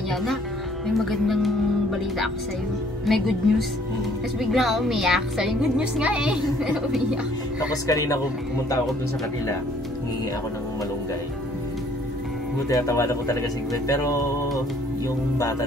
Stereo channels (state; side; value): normal; both; correlation 0.60